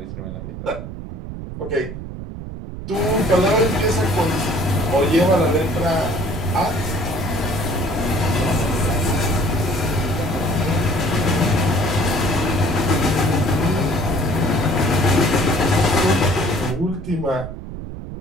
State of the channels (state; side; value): noise; right; rumble, 9 dB below the sound